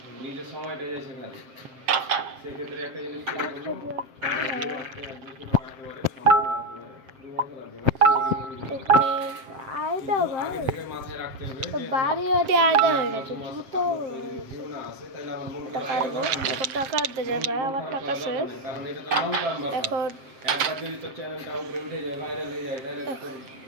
নিজের সময়টা যায় সেখানে। সেক্ষেত্রে একটা জিনিস বাড়ি আয়দা হয়ে গেছে জুতো টাকা আনতে যায় ভাই। আমার টাকা শেষ। এখন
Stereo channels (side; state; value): left; late; 7.6 ms